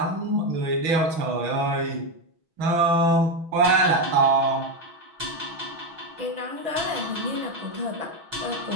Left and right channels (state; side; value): late; left; 6.2 ms